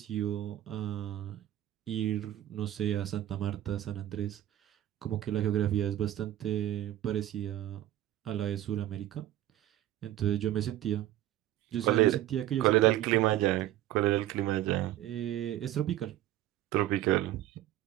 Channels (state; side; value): quieter; left; 13.4 dB